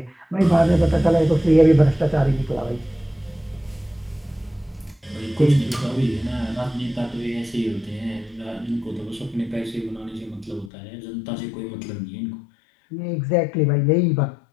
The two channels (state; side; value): drops out; right; at 10.7 s